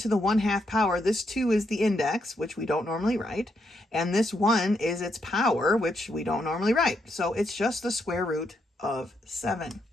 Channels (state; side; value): normal; both; correlation 0.79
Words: the 1/2 power, this 2 is the index, which we don't normally write, and this 1 is its power, which we don't normally write. So it's just the square root of 7.